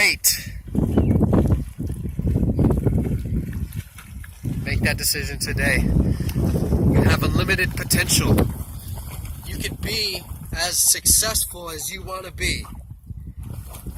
Make that decision today. You have unlimited potential. You can be as successful as you want to be.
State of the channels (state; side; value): identical; both; correlation 1.00